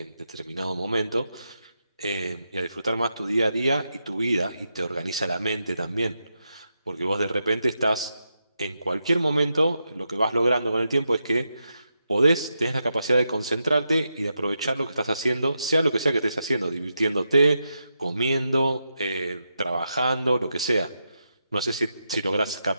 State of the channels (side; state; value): both; inverted; correlation -0.85